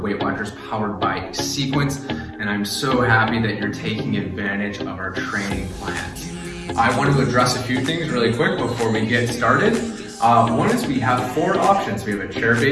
Weight Watchers powered by Sequence, and I'm so happy that you're taking advantage of our training plans. I want to address a few things really quick before we get started. One is we have 4 options. We have a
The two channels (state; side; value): identical; both; correlation 1.00